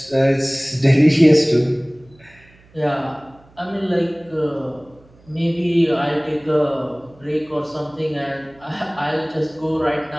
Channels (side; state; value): right; noise; hum, 28 dB below the sound